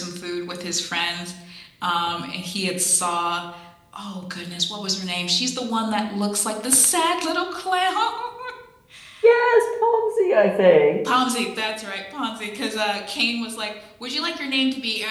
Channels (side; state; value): both; identical; correlation 1.00